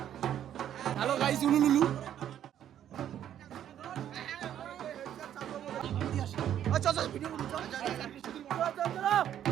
হ্যালো গাইস, উলুলুলু চল ভিডিও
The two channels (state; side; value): quieter; left; 10.5 dB